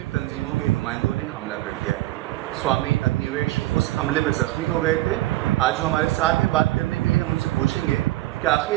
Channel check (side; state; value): left; quieter; 17.3 dB